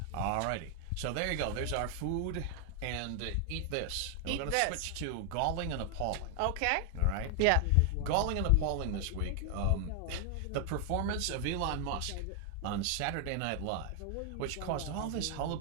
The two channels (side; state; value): both; different; correlation 0.00